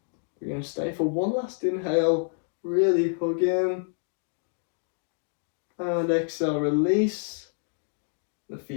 We're going to stay for one last inhale. Really hug in. And exhale, release. The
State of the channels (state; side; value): silent; right; digital silence